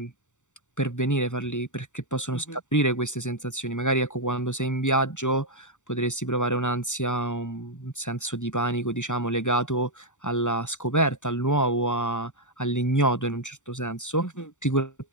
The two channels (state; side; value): late; right; 0.85 ms